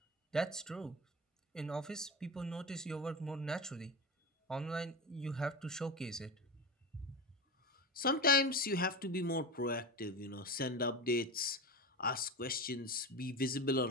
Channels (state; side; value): normal; both; correlation 0.23